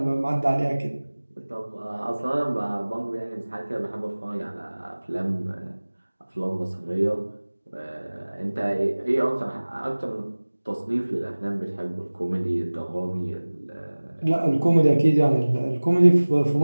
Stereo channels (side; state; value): both; inverted; correlation -1.00